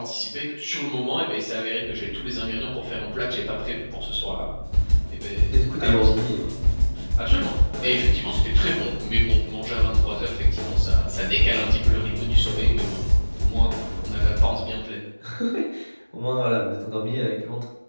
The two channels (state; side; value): inverted; both; correlation -1.00